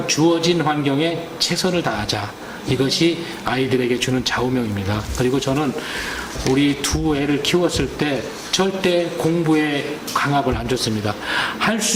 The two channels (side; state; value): both; identical; correlation 1.00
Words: 주어진 환경에 최선을 다하자. 이것이 아이들에게 주는 좌우명입니다. 그리고 저는 우리 두 애를 키웠을 때 절대 공부에 강압을 안 줬습니다. 할